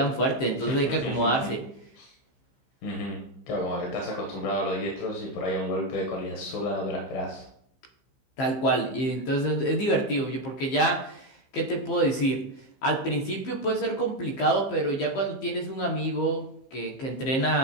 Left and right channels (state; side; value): late; right; 15 ms